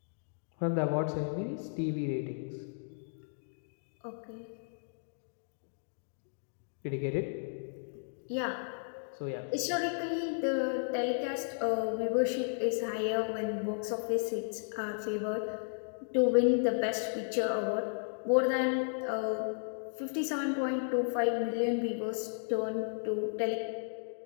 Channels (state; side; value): silent; right; digital silence